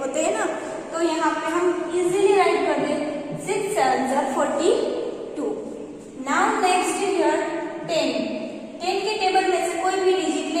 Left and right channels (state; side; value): identical; both; correlation 1.00